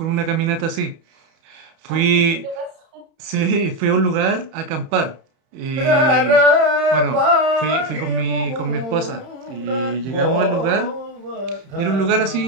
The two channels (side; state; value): left; late; 31 ms